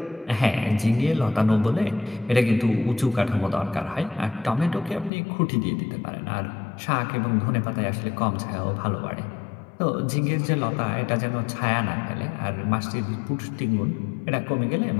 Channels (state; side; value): drops out; right; at 5.1 s